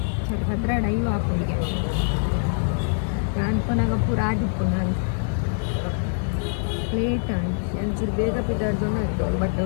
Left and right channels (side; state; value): right; silent; digital silence